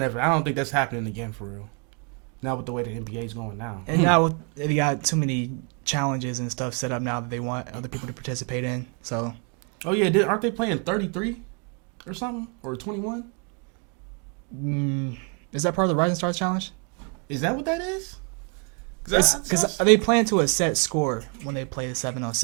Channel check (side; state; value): left; quieter; 37.7 dB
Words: think that's happening again for real. Not with the way the NBA is going now. And now they got too many challenges and stuff set up now that they want other people to participate in. So. Oh yeah, aren't they playing 33 or something, or 21? Is that part of the Rising Stars Challenge? Is that what that is? Because they play into a set score when they play the